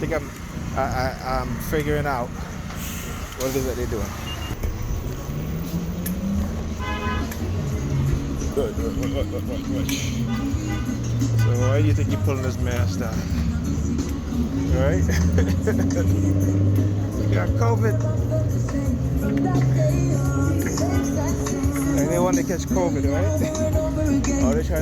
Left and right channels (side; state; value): both; identical; correlation 1.00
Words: I'm figuring out what it is that they're doing. Good. So why do you think you're pulling this mask down? right? You got COVID. And they want to catch COVID, right? Oh, they're trying